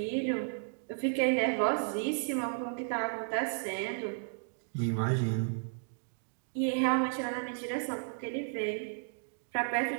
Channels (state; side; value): silent; left; digital silence